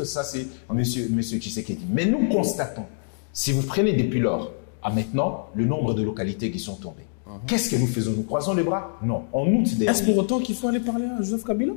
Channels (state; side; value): silent; right; digital silence